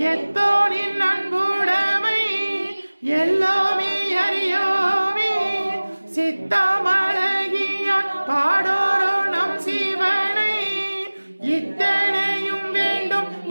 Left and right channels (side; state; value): both; inverted; correlation -1.00